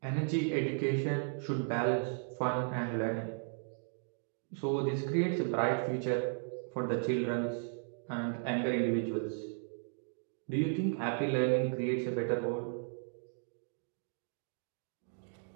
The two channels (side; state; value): left; silent; digital silence